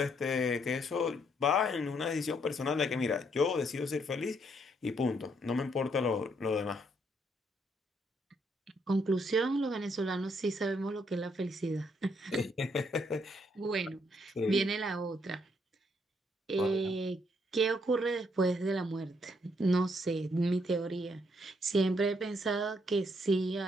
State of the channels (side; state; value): both; normal; correlation 0.72